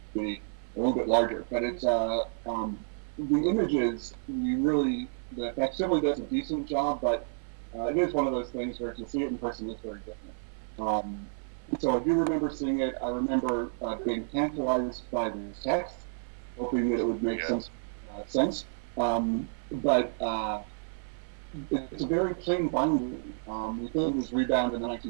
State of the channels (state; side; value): silent; left; 58 dB below the other